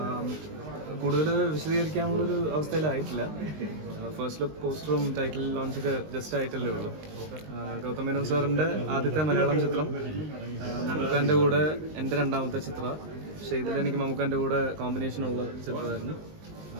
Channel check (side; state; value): left; late; 19 ms